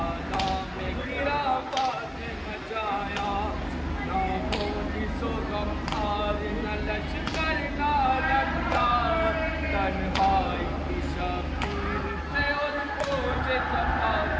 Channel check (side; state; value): both; identical; correlation 1.00